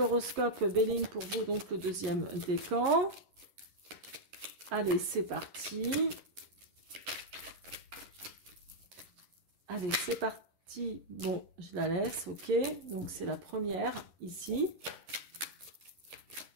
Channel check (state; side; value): late; left; 11 ms